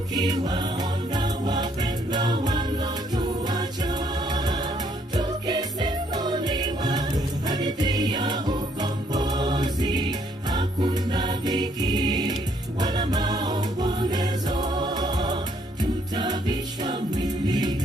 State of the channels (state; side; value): normal; both; correlation 0.68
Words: wapendwa walotuacha, tukisimuliwa hadithi ya ukombozi. Hakuna dhiki wala maombolezo, tutavisha